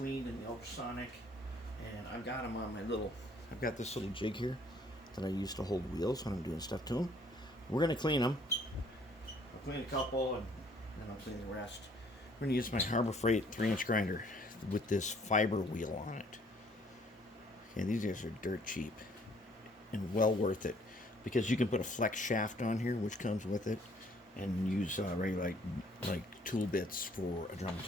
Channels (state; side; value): normal; both; correlation 0.61